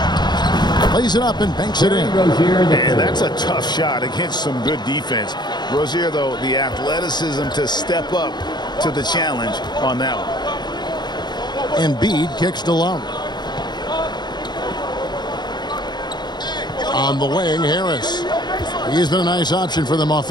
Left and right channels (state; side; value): late; right; 0.21 ms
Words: Lays it up and banks it in. And that's a tough shot against some good defense. Rozier, though, the athleticism to step up to the challenge on that one. Embiid kicks to Love. On the wing, Harris. He's been a nice option for them